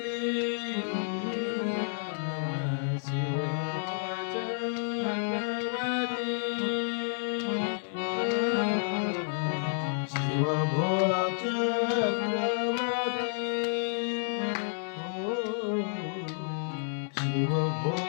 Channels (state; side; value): silent; right; 58 dB below the other